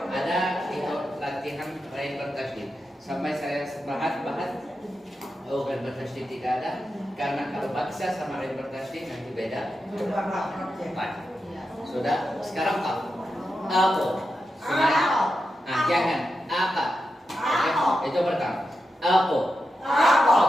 ada itu latihan lain bertasydid sampai saya bahas oh lain bertasydid tidak ada karena kalau baksa sama lain bertasydid nanti beda. Baik. Sudah sekarang aku sudah jangan apa itu pertama aku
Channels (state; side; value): normal; both; correlation 0.88